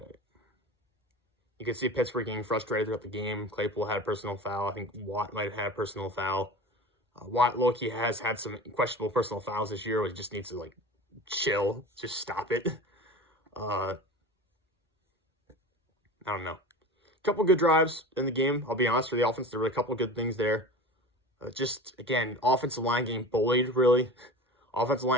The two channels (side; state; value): both; normal; correlation 0.34